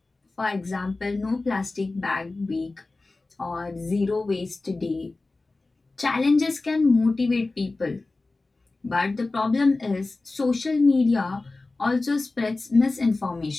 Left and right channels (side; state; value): right; quieter; 3.3 dB